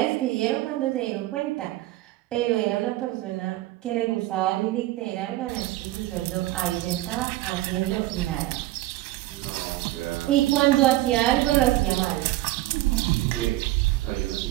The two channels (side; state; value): left; quieter; 16.7 dB